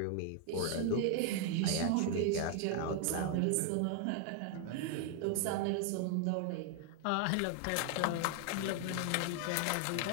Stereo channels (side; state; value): both; different; correlation 0.00